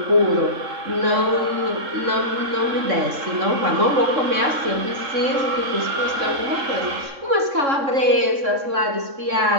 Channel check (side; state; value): left; late; 3.6 ms